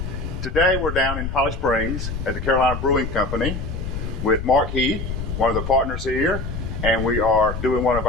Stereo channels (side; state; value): left; noise; rumble, 5 dB below the sound